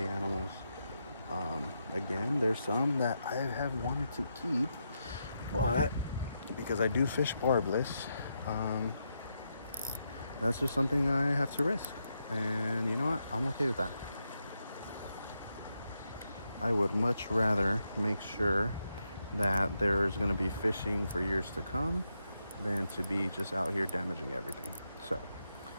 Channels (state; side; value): inverted; both; correlation -0.83